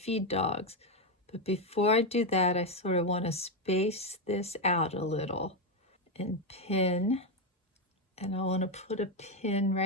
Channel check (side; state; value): both; normal; correlation 0.06